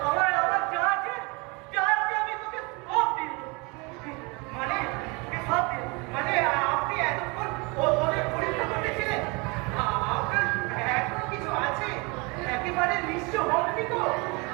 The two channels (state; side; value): quieter; left; 28.7 dB